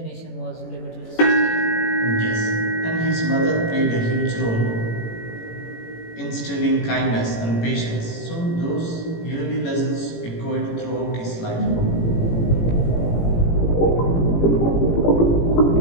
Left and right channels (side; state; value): right; late; 18 ms